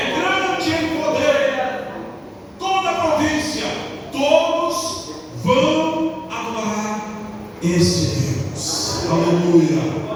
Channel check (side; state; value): both; identical; correlation 1.00